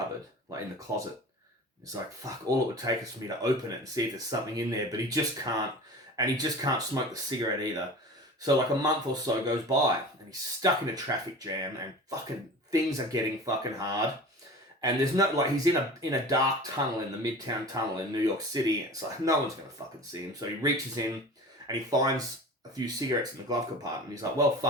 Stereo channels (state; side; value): normal; both; correlation 0.37